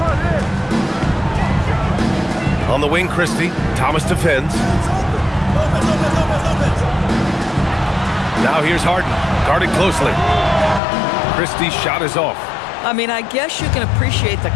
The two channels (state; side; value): drops out; right; at 10.8 s